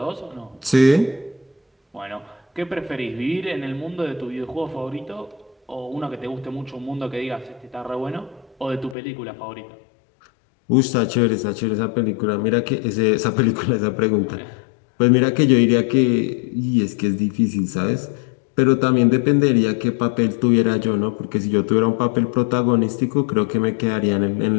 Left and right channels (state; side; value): drops out; right; at 9.0 s